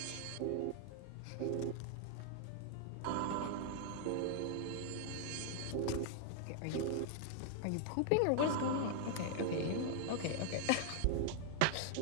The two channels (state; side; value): different; both; correlation 0.00